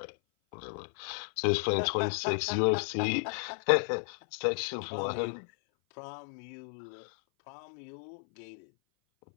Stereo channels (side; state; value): right; silent; 56 dB below the other